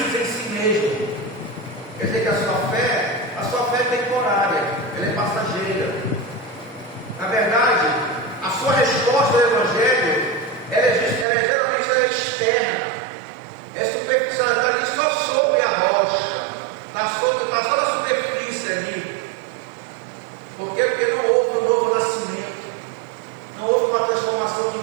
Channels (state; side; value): drops out; left; at 11.2 s